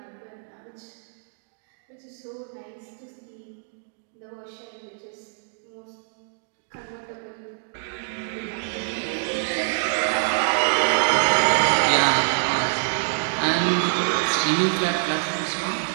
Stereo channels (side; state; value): left; silent; digital silence